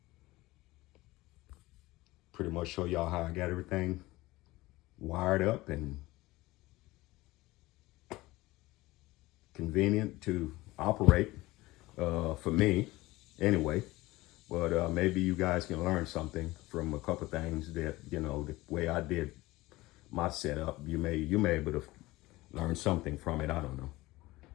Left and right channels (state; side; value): quieter; right; 19.5 dB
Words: pretty much show y'all how I got everything wired up and convenient to operate, for me anyway. But maybe you guys can learn something from a couple things that, you know, the way I did my setup. You may be able to learn something from it. I don't know.